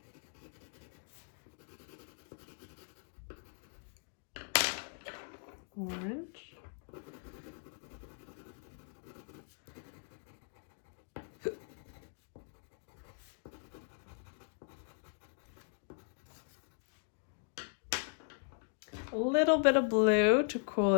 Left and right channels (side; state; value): right; silent; 52 dB below the other